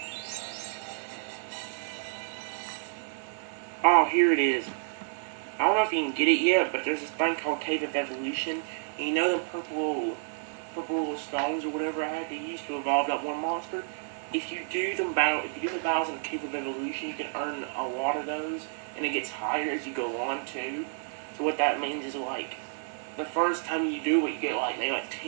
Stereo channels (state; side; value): silent; left; 58 dB below the other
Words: Oh, here it is. I don't know if you can get it yet, but there's this thing called Cave of Evolution. And you know the purple little stones or whatever I had to use to evolve that one monster? If you do the battles in the Cave of Evolution, you can earn a lot of those, and it gets higher as you go on too. So what that means is like the first time you do it, you get like maybe like